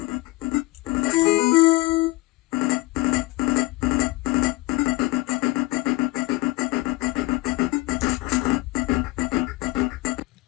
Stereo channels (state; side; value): quieter; right; 21.3 dB